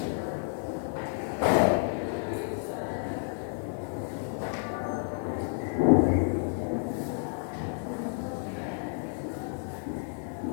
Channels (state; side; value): silent; right; 57 dB below the other